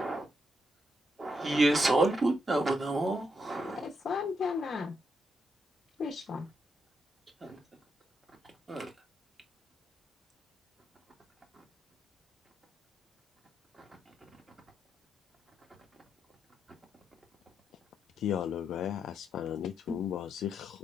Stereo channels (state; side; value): normal; both; correlation 0.81